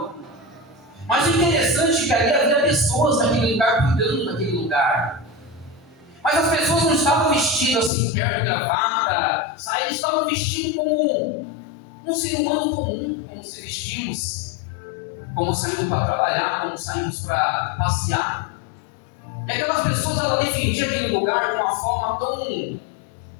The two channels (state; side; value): drops out; right; at 7.9 s